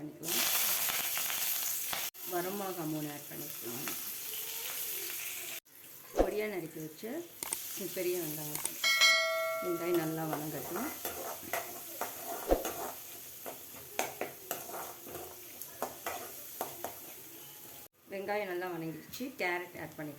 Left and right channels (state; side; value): identical; both; correlation 1.00